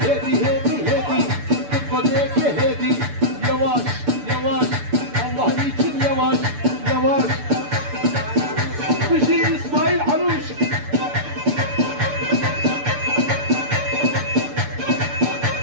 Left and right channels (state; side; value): late; left; 6.9 ms